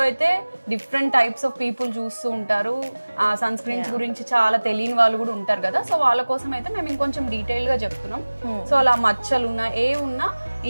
అయితే డిఫరెంట్ టైప్స్ ఆఫ్ పీపుల్ చూస్తూ ఉంటారు. ఆ సన్ స్క్రీన్స్ గురించి చాలా తెలియని వాళ్ళు కూడా ఉంటారు కదా. సో వాళ్ళ కోసం అయితే మేము ఇంకొంచెం డీటెయిల్ గా చెప్తున్నాం. సో అలా మచ్చలు ఉన్నా ఉన్నా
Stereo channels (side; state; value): both; inverted; correlation -1.00